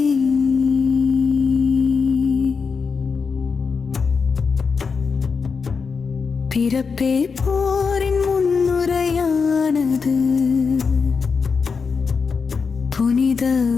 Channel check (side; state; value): right; quieter; 5.3 dB